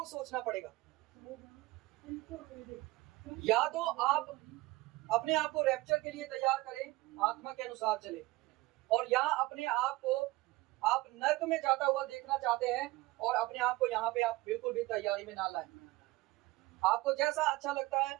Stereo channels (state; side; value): quieter; left; 20.4 dB